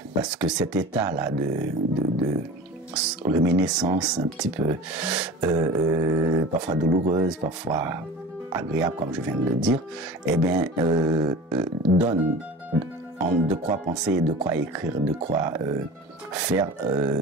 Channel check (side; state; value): both; normal; correlation 0.37